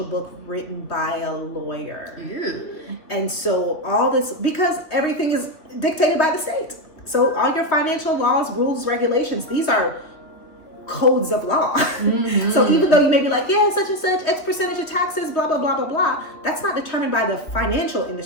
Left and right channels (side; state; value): right; late; 2.9 ms